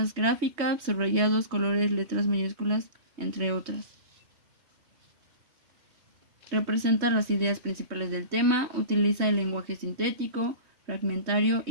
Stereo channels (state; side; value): late; left; 3.2 ms